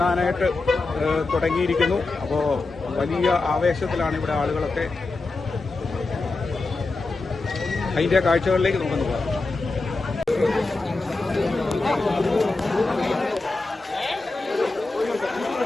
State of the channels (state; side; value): quieter; right; 3.5 dB